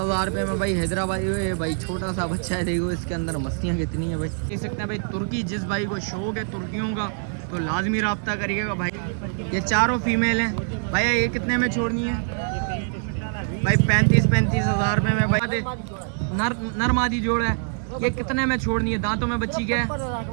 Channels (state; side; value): silent; left; 62 dB below the other